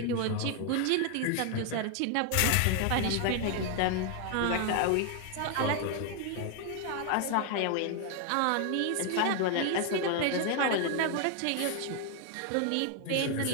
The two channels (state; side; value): different; both; correlation 0.00